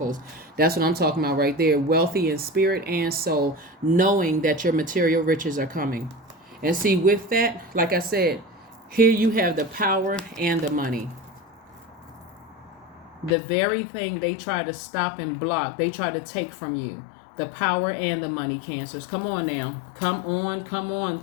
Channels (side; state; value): right; drops out; at 13.4 s